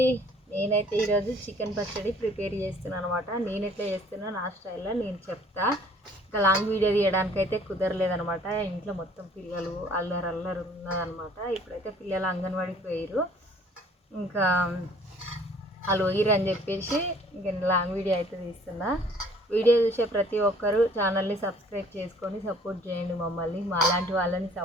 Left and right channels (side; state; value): both; normal; correlation 0.56